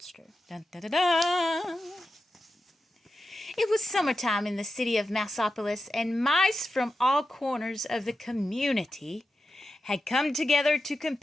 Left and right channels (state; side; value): normal; both; correlation 0.90